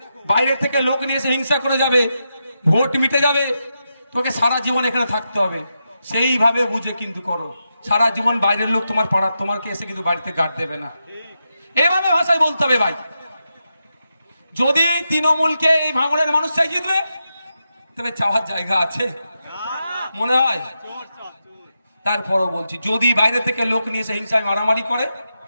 বাইরে থেকে লোক নিয়ে এসে হিংসা করে যাবে, ভোট মিটে যাবে, তোকে সারা জীবন এখানে থাকতে হবে। সেইভাবে বুঝে কিন্তু করো। সারা জীবন বাইরের লোক তোমার পাড়ার তোমাকে এসে কিন্তু বাড়িতে গার্ড দেবে না। এভাবে ভাষায় বলতে হবে ভাই। যদি তৃণমূলকে এই ভাঙড়ের মানুষটাই জিতবে, তবে চাওয়ার জায়গা আছে মনে হয়? তারপরও বলছি, যদি বাইরে থেকে লোক নিয়ে এসে হিংসায় মারামারি করে,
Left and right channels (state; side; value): inverted; both; correlation -0.87